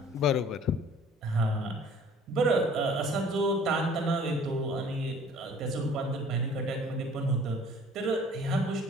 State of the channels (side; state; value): both; normal; correlation 0.51